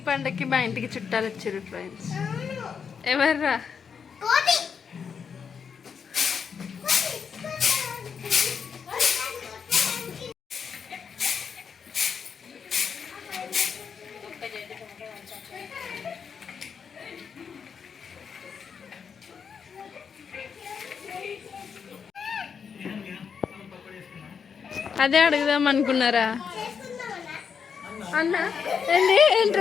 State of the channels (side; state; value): right; quieter; 6.6 dB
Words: పండగకి మా ఇంటికి చుట్టాలు వచ్చారు ఫ్రెండ్స్. ఎవర్రా? కోటి అదే అడుగుదాం అనుకున్నారా అన్న? ఏంటి